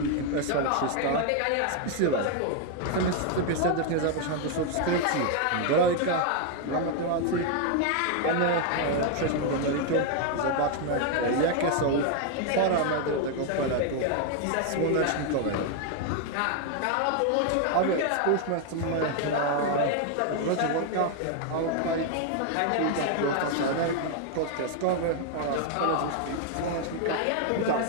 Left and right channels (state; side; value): different; both; correlation 0.00